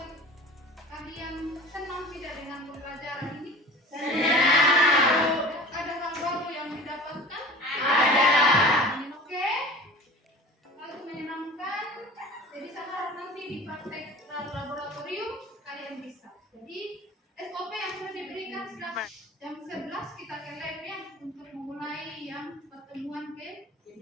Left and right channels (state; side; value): normal; both; correlation 0.40